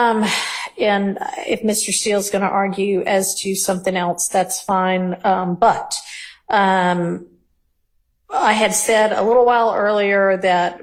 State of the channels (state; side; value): identical; both; correlation 1.00